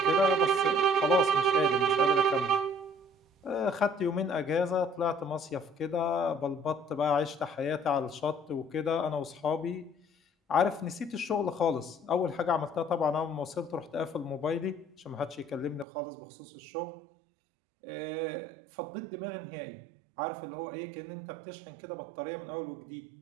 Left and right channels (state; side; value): drops out; left; at 15.9 s